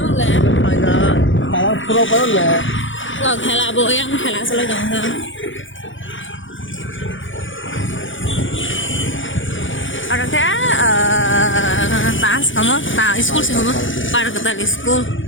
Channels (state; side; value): late; right; 0.56 ms